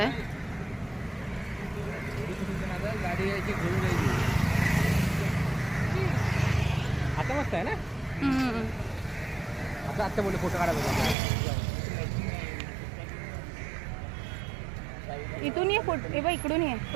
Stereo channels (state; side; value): drops out; left; at 11.2 s